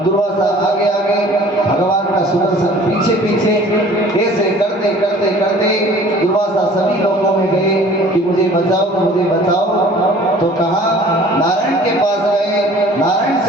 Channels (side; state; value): both; normal; correlation 0.49